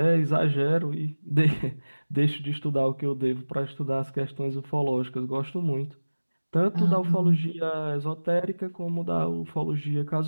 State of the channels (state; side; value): inverted; both; correlation -1.00